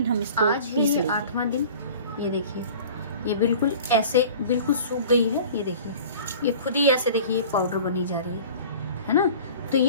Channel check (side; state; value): both; inverted; correlation -0.43